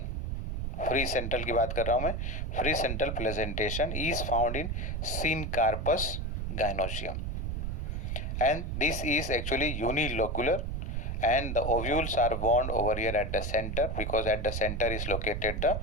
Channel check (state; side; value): noise; right; rumble, 2 dB below the sound